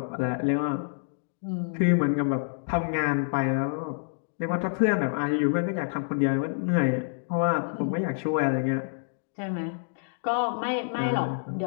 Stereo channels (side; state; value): right; silent; digital silence